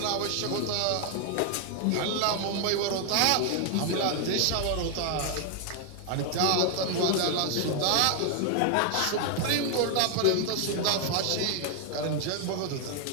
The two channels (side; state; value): both; different; correlation 0.00